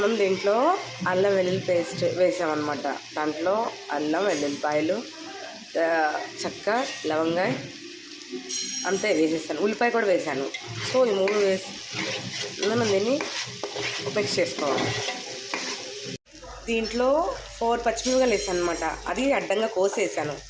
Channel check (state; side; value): identical; both; correlation 1.00